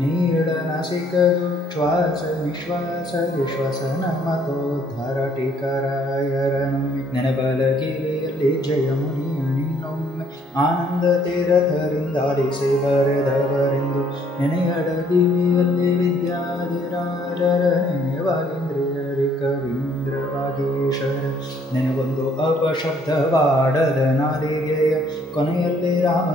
ನೀಳನಸಿಕದು ಶ್ವಾಸ ನಿಶ್ವಾಸ ವಿಶ್ವಸನ ಮತೋದ್ಧಾರ ಟೀಕರಾಯರನೊಮ್ಮೆ ನೆನಬಲಗಿರಿಯಲ್ಲಿ ಜಯಮುನಿಯ ನಿನ್ನೊಮ್ಮೆ ಆನಂದ ತೀರಥರಿಂದಾಲಿಸಿ ಬರೆದವರೆಂದು ನೆನೆಯಡಗಿವಿಯಲ್ಲಿ ವಿದ್ಯಾಧಿರಾಜರ ನೆನೆವಾಗೇಂದ್ರಿಯರಿ ಕವೀಂದ್ರ ವಾಗೀಶರ ನೆನೆಗೊಂದು ಅಪಶಬ್ದವಾಡದ ನಾದಿಗೆಯ ಕೊನೆಯಲ್ಲಿ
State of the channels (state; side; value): normal; both; correlation 0.64